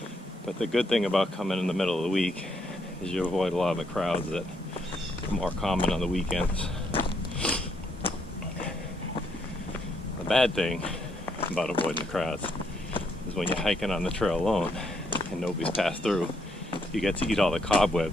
but the good thing about coming in the middle of the week is you avoid a lot of the crowds that more common on the weekends. The bad thing about avoiding the crowds is when you're hiking on the trail alone and nobody's passed through, you get to eat all the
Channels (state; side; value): normal; both; correlation 0.74